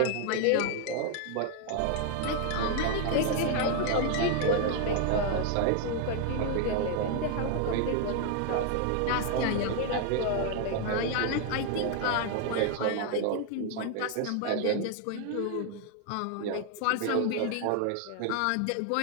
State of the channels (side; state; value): both; different; correlation 0.00